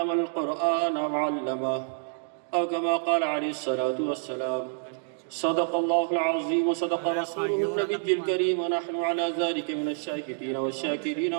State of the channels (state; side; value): silent; left; digital silence